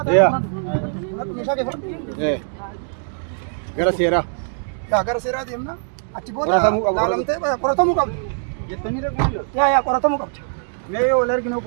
ta'a meeshaa kee fudhadhu gara seeraa gara seeraa deemna achi booda laalamtee qoratamuu qabdi. Jettanii rakkoon Yaa qoratamuu qabdi. mee wal arginu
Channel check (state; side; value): silent; left; digital silence